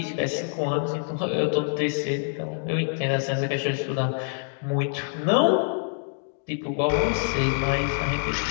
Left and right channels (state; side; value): silent; right; digital silence